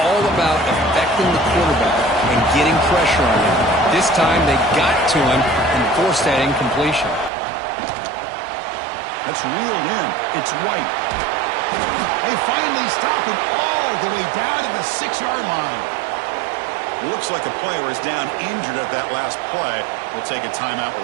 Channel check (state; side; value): drops out; left; at 7.3 s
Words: about affecting the quarterback and getting pressure on him. This time they got to him and forced that incompletion. That's reeled in. It's White. They finally stop him all the way down to the 6-yard line. Looks like a player is down injured at that last play. We'll take a timeout while